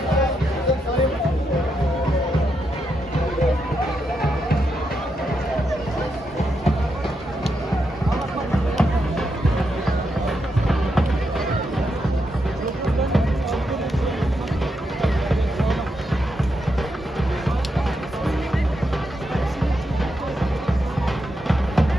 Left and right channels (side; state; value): both; normal; correlation 0.83